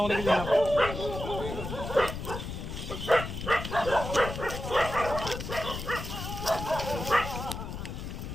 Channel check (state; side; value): noise; left; rumble, 7 dB below the sound